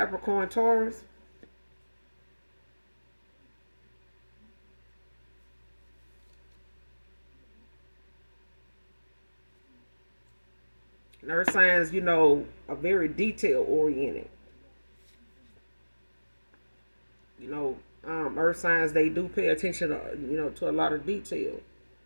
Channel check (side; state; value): both; inverted; correlation -1.00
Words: Taurus. And earth signs, are very detail oriented. Earth signs, they do pay attention to, to a lot of detail.